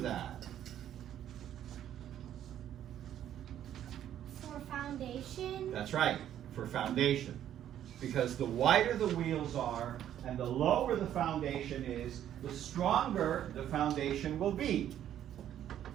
For foundation. That's right, for foundation. Because the wider the wheels are and the lower the foundation is, the stronger the foundation will be.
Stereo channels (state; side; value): quieter; left; 10.9 dB